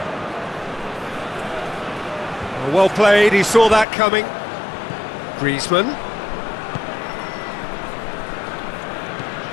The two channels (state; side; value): drops out; right; at 3.9 s